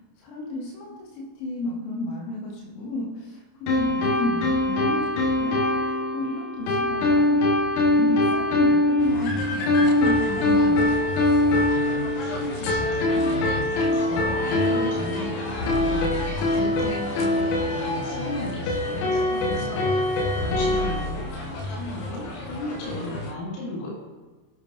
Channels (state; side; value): late; right; 30 ms